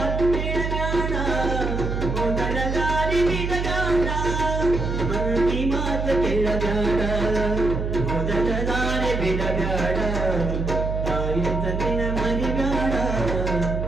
ಕೇಳಬೇಡ, ಮೊದಲ ದಾರಿ ಬಿಡಬೇಡ. ಮಂದಿ ಮಾತು ಕೇಳಬೇಡ, ಮೊದಲ ದಾರಿ ಬಿಡಬೇಡ. ಮರಿಬ್ಯಾಡ ತಾಯಿ ತಂದಿನ ಮರಿಬ್ಯಾಡ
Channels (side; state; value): right; noise; hum, 2 dB below the sound